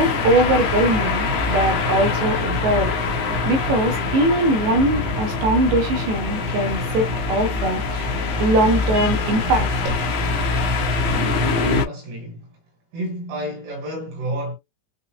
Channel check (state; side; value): late; left; 18 ms